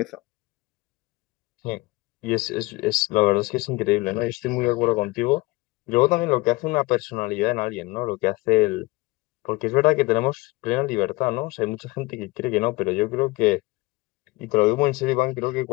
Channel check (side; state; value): right; quieter; 22.3 dB